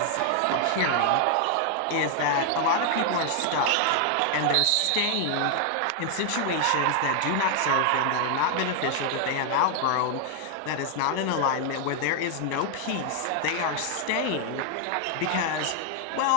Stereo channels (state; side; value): different; both; correlation 0.00